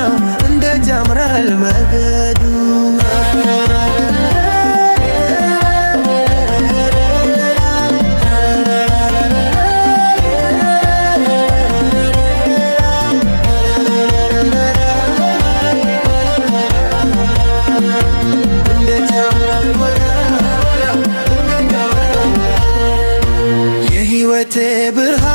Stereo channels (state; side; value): inverted; both; correlation -1.00